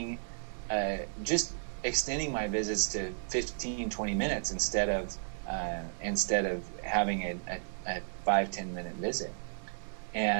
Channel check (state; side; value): silent; left; digital silence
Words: extending my visits to 15-20 minutes instead of having a 5-10 minute visit.